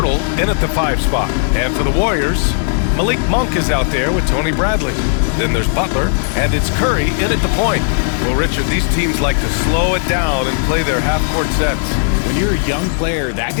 in at the 5 spot. And for the Warriors, Malik Monk is out there with Tony Bradley. Then there's Butler. And it's Curry in at the point. Well, Richard, these teams like to slow it down and play their half-court sets. When you're a young player, that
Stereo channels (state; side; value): silent; right; digital silence